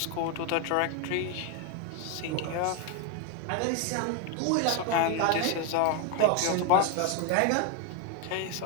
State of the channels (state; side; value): different; both; correlation 0.01